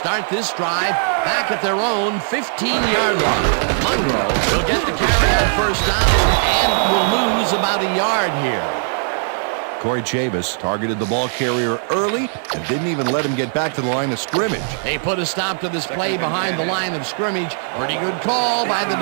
this drive back at their own 15-yard line. Monroe will get the carry on first down and will lose about a yard here. Corey Chavis targeted the ball carrier early and didn't even let him get back to the line of scrimmage. They put a stop to this play behind the line of scrimmage. Pretty good call by the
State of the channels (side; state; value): left; silent; 57 dB below the other